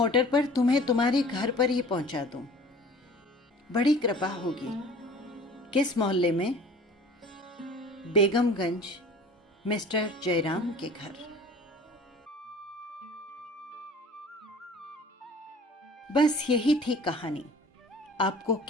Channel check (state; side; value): normal; both; correlation 0.45